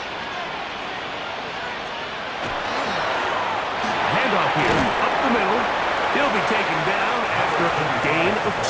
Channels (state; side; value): identical; both; correlation 1.00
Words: Handoff here, up the middle. He'll be taken down after a gain of